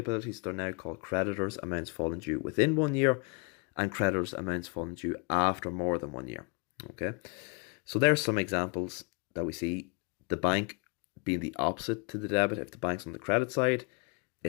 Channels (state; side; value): quieter; right; 34.7 dB